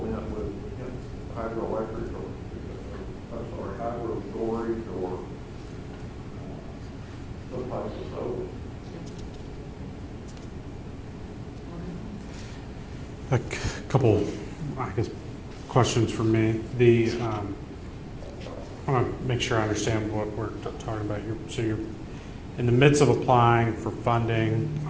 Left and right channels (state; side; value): identical; both; correlation 1.00